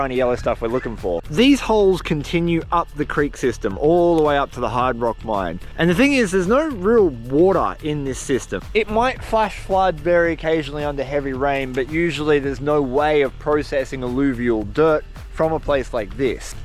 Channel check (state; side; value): identical; both; correlation 1.00